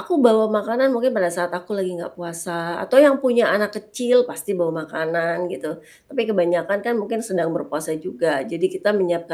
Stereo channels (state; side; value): identical; both; correlation 1.00